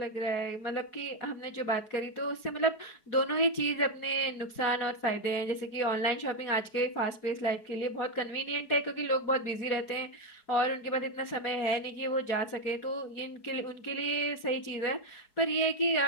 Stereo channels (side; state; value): right; late; 4.7 ms